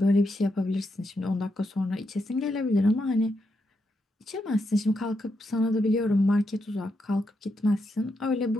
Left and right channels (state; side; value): normal; both; correlation 0.82